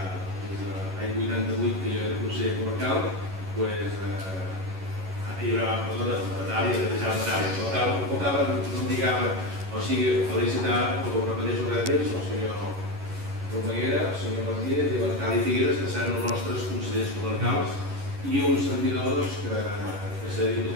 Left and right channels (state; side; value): late; left; 11 ms